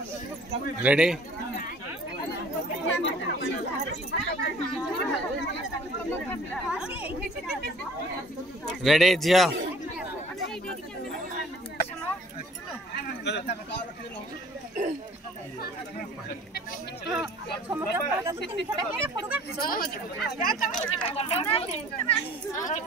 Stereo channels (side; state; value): both; normal; correlation 0.51